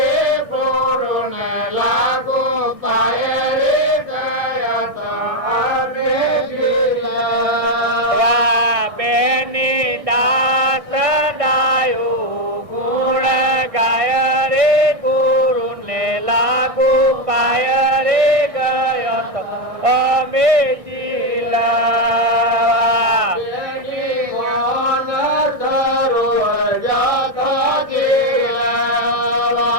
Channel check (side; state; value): left; late; 1.6 ms